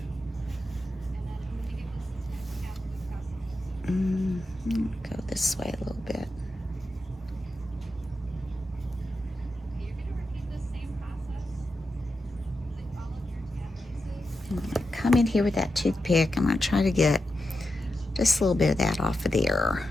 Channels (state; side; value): normal; both; correlation 0.88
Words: Go this way a little bit. I'm going to come in here with that toothpick. I'm going to try to get just a little bit of that off of there.